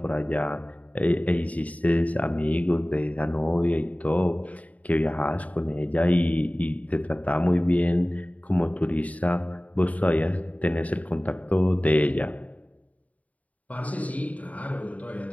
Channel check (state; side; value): late; right; 0.070 ms